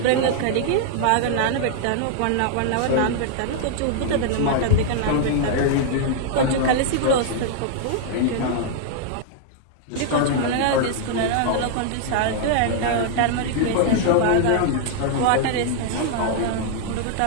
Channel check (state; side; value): different; both; correlation -0.01